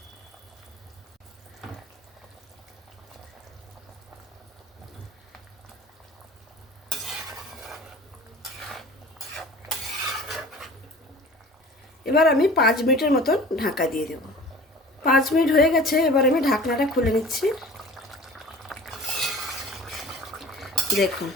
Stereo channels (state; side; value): normal; both; correlation 0.43